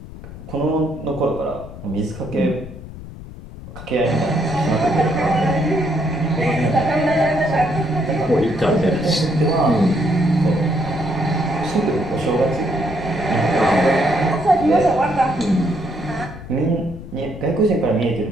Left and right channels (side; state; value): left; noise; rumble, 14 dB below the sound